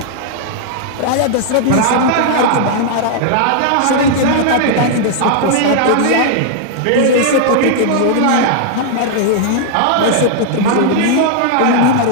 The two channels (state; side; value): different; both; correlation -0.01